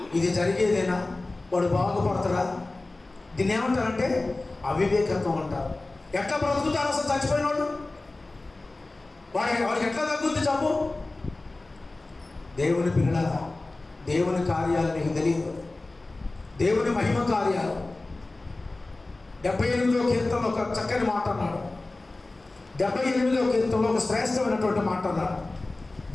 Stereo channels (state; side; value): quieter; right; 3.1 dB